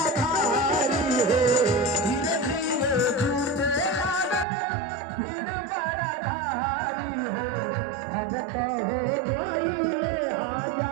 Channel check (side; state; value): left; drops out; at 4.5 s